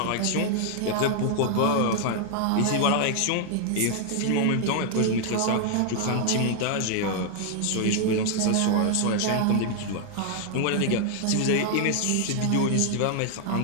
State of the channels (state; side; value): different; both; correlation 0.00